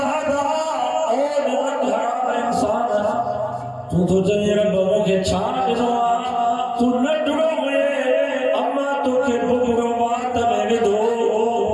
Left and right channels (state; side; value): identical; both; correlation 1.00